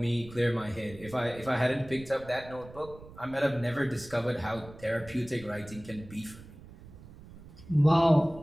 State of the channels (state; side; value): noise; right; rumble, 18 dB below the sound